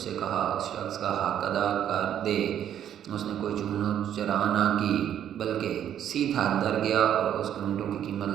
कहा, उस शख्स का हक अदा कर दे। उसने कोई चूनो चरा ना की बल्कि सीधा अंदर गया और उसके ऊँटों की कीमत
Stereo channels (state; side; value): quieter; left; 10.1 dB